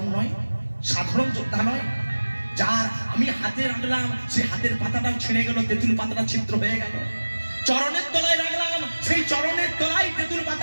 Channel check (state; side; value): inverted; both; correlation -1.00